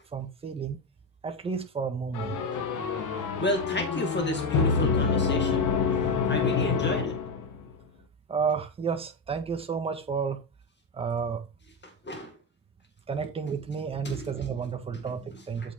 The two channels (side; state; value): both; normal; correlation 0.15